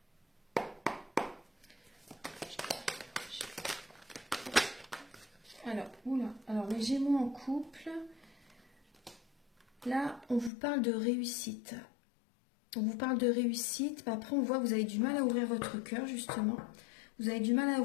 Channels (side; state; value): right; drops out; at 10.5 s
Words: Alors, les Gémeaux en couple, là, on vous parle de réussite. On vous parle de réussite, mais après on voit que vous avez du mal à ouvrir votre cœur, justement. Vous avez du mal à